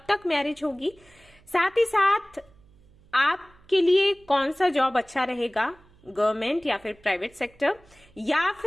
तक मैरिज होगी, साथ ही साथ आपके लिए कौन सा जॉब अच्छा रहेगा, गवर्नमेंट या फिर प्राइवेट सेक्टर, या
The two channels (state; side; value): noise; right; hum, 29 dB below the sound